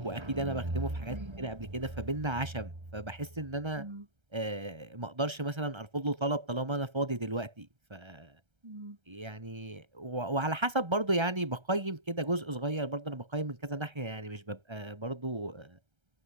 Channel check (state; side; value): late; left; 1.3 ms